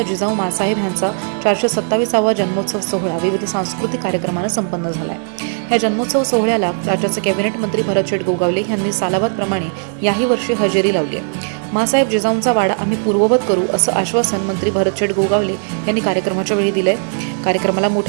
जिजाऊ मासाहेब यांचा 427वा जन्मोत्सव सोहळा विविध सांस्कृतिक कार्यक्रमाने संपन्न झाला आहे। या जन्मोत्सव सोहळ्याला राज्याचे कॅबिनेट मंत्री भरत गोगावले यांनी सालाबादप्रमाणे याही वर्षी हजेरी लावली आहे। मासाहेब जिजाऊंचा वाडा आम्ही पूर्ववत करू असं आश्वासन मंत्री भरत गोगावले यांनी कार्यक्रमाच्या वेळी दिले। कार्यक्रमाला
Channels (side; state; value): left; silent; 68 dB below the other